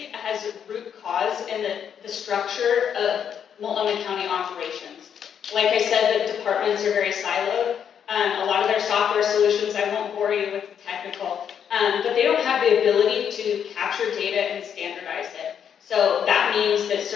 has a root cause in the structure of Multnomah County operations. Like I said, the departments are very siloed. A lot of their software solutions, I won't bore you with the technical, but they don't have the ability to capture data and standardize it. So that means that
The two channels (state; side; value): quieter; right; 8.2 dB